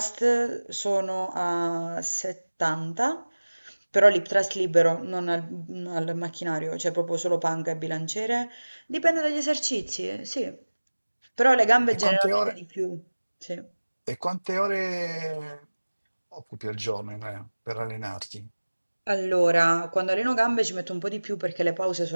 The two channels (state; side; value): inverted; both; correlation -1.00